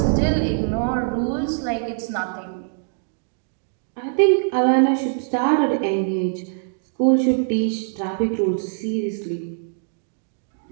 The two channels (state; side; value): silent; left; digital silence